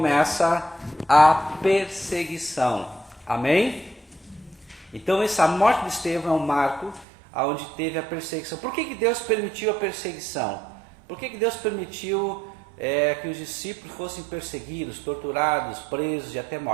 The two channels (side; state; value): left; drops out; at 7.1 s